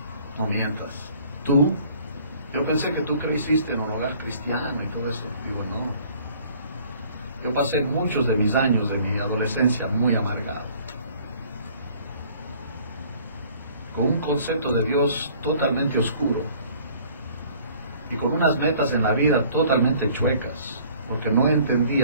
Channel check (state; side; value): inverted; both; correlation -0.55